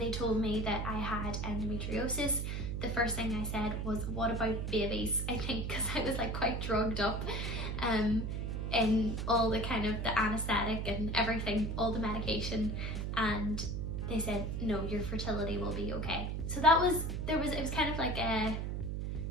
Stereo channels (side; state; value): right; noise; hum, 2 dB below the sound